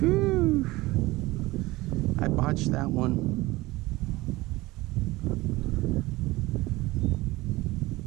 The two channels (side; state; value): left; quieter; 20.0 dB